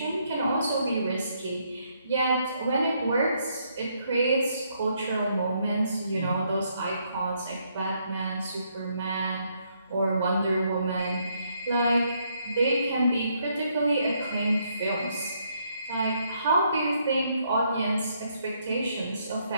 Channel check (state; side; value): inverted; both; correlation -0.73